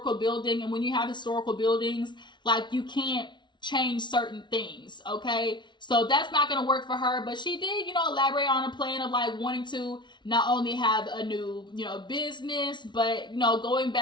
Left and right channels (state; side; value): late; right; 0.22 ms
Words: building. And when you have historical buildings, like you can't change certain things, okay? So that's not going to work for her. But she did, elaborate on a plan of like wanting to not only have a new, business, but, going